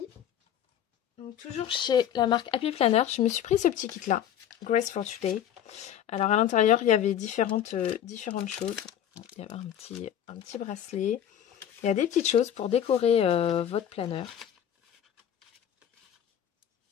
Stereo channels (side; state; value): right; quieter; 10.0 dB